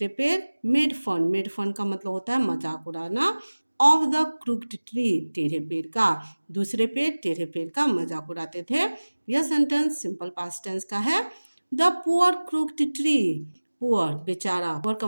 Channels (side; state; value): both; inverted; correlation -1.00